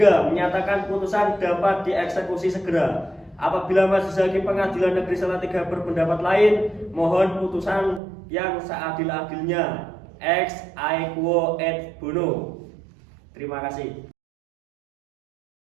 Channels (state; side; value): drops out; left; at 8.0 s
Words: Menyatakan putusan dapat dieksekusi segera. Apabila Majelis Hakim Pengadilan Negeri Salatiga berpendapat lain, mohon putusan yang seadil-adilnya. Ex aequo et bono. Terima kasih.